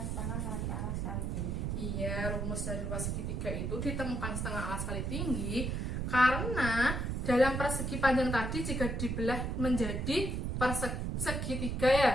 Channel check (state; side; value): noise; right; rumble, 1 dB below the sound